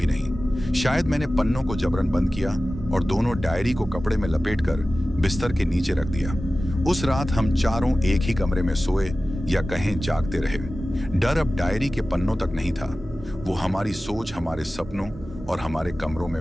नहीं। शायद मैंने पन्नों को जबरन बंद किया और दोनों डायरी को कपड़े में लपेटकर बिस्तर के नीचे रख दिया। उस रात हम चारों एक ही कमरे में सोए, या कहें जागते रहे। डर अब डायरी के पन्नों तक नहीं था, वो हमारी सोच, हमारे सपनों और हमारे कमरों में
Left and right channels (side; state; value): both; normal; correlation 0.96